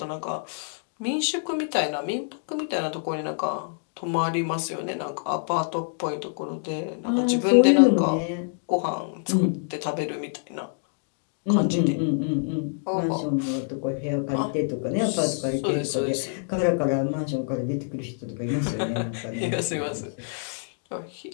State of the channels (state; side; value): silent; right; digital silence